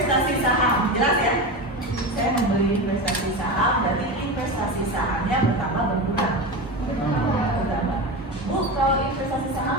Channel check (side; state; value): both; normal; correlation 0.23